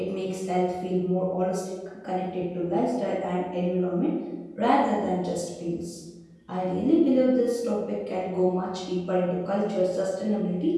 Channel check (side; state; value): both; identical; correlation 1.00